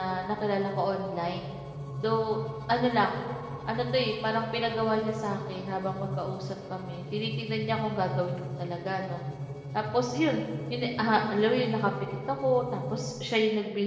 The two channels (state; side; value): identical; both; correlation 1.00